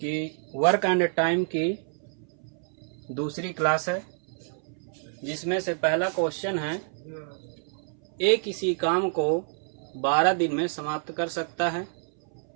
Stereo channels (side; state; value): left; silent; 58 dB below the other